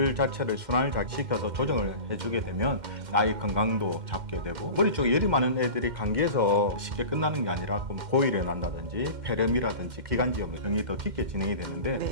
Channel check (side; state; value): left; late; 2.1 ms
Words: 자체를 순환을 잘 시켜서 조정을 해주게 되면 아이 건강도 잡게 되고, 머리 쪽에 열이 많은 애들이 감기에서 쉽게 끝나는 게 아니라 고일에 난다든지 폐렴이라든지 기관지염 등이 더 깊게 진행이 되는데